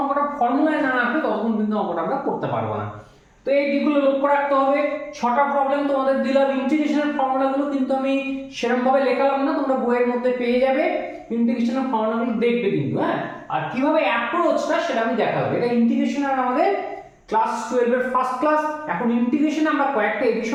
অঙ্কটা ফর্মুলায় না আসবে ততক্ষণ কিন্তু অঙ্কটা আমরা করতে পারবো না। তো এই দিকগুলো লক্ষ্য রাখতে হবে। 6টা প্রবলেম তোমাদের দিলাম, ইন্টিগ্রেশনের ফর্মুলাগুলো কিন্তু আমি সেরকম ভাবে লেখালাম না, তোমরা বইয়ের মধ্যে পেয়ে যাবে, ইন্টিগ্রেশনের ফর্মুলাগুলো দেখবে কিন্তু। হ্যাঁ, আর কিভাবে অ্যাপ্রোচটা সেটা আমি দেখাবো। এটা ইন্টিগ্রেশনের আমাদের ক্লাস 12 এর ফার্স্ট ক্লাস। এখন ইন্টিগ্রেশনে আমরা কয়েকটা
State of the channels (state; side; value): identical; both; correlation 1.00